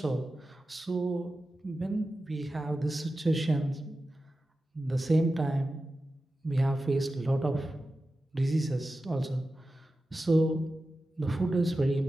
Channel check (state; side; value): normal; both; correlation 0.93